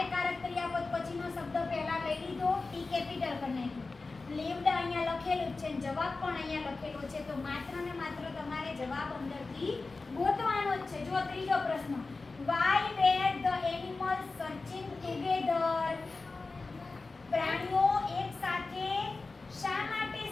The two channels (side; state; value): right; quieter; 3.7 dB